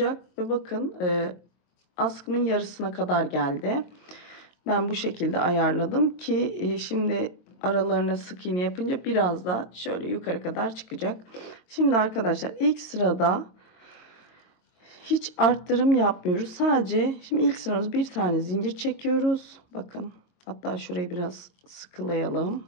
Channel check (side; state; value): right; late; 22 ms